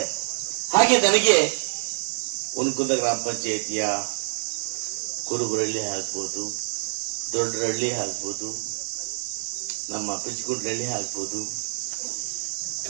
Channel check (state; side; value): silent; left; 61 dB below the other